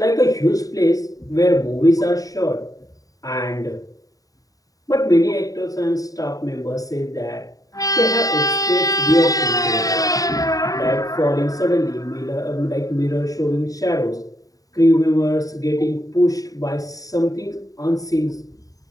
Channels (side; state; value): right; late; 0.17 ms